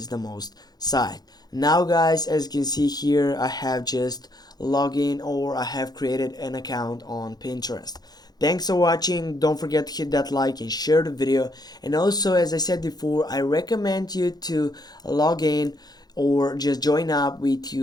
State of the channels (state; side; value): late; right; 0.19 ms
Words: the most site. Now guys, as you can see here, I have just logged in, or I have created an account on Pinterest. Thanks for watching. Don't forget to hit that like and share the video. And also, as I said before, I recommend you to log in or just join up with